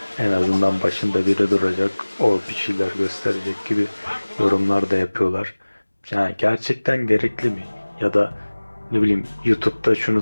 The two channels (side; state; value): both; inverted; correlation -1.00